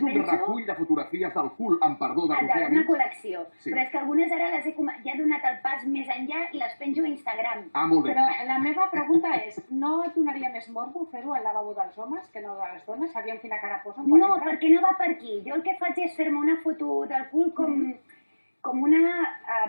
un penso... recull de fotografies del cul, amb perdó, de Roser Una Amics. col·lecció. Sí. Però és que algunes ara les he ja he donat el pas més enllà i les penjo a Instagram. Ah, molt bé. Però la meva pregunta és, no et donaria més morbo fer-ho al lavabo dels homes que no de les dones? Sabíem quina cara posen quan No, entren? perquè no va per aquí. Jo el que faig és fer-me una foto del cul com una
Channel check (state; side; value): inverted; both; correlation -1.00